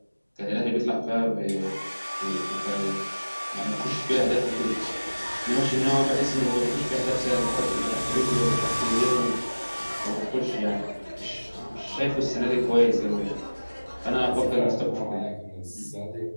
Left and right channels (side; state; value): both; inverted; correlation -1.00